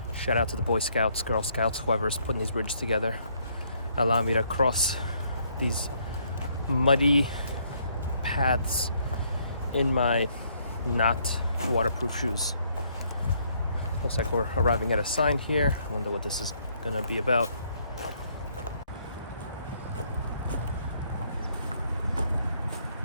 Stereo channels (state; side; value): inverted; both; correlation -0.68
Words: shout out to the Boy Scouts, Girl Scouts, whoever's putting these bridges together, allow me to cross these muddy paths in my not waterproof shoes. Looks like we're arriving at a sign here. I wonder what this is gonna be about.